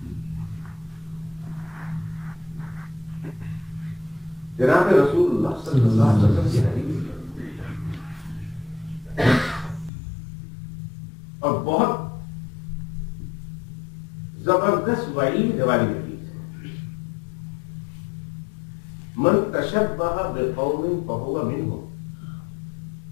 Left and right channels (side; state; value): right; drops out; at 9.9 s